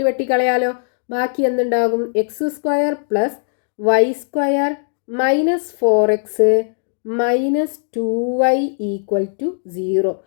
വെട്ടിക്കളയാലോ. ബാക്കി എന്തുണ്ടാകും? X square plus y square minus 4x minus 2y equal to 0.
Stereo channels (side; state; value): right; silent; digital silence